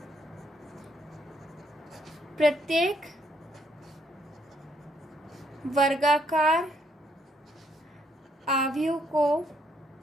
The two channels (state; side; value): normal; both; correlation 0.71